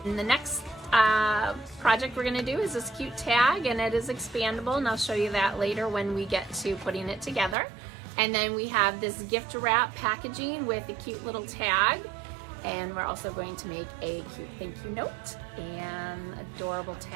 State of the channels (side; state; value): left; drops out; at 7.6 s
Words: And the next project we're going to do is this cute tag, and it is expandable, and I'll show you that later when we get to putting it together. And then we have this gift wrap packaging with a cute little tag. And we're also going to make a cute thank you note and adorable